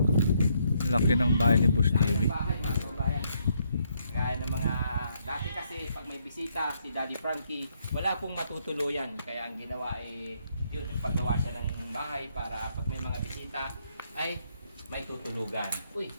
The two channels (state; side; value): inverted; both; correlation -0.73